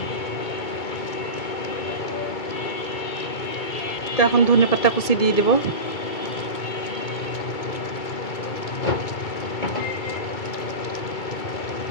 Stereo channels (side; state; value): right; late; 2.2 ms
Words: তো এখন ধনেপাতা কুচি দিয়ে দেব।